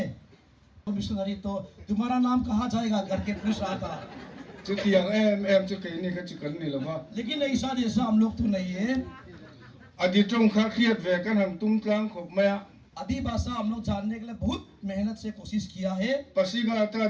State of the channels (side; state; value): both; identical; correlation 1.00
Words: मिशनरी तो तुम्हारा नाम कहाँ जाएगा करके पूछ रहा था, लेकिन ऐसा जैसा हम लोग तो नहीं है। आदि भाषा हम लोग जानने के लिए बहुत मेहनत से कोशिश किया है। पसीघाट का